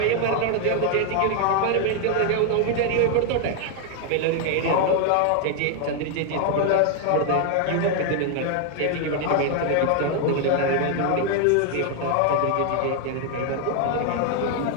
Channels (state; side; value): different; both; correlation 0.00